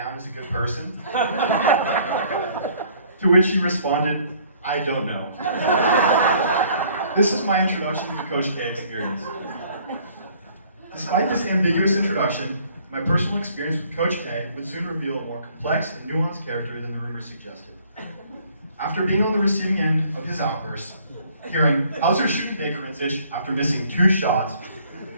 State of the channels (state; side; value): inverted; both; correlation -0.59